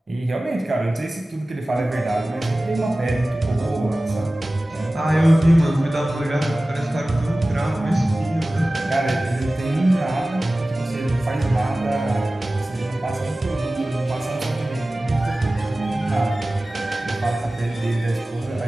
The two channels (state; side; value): normal; both; correlation 0.97